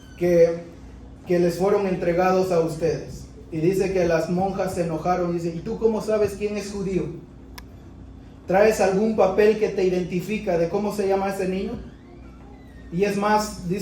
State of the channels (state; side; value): identical; both; correlation 1.00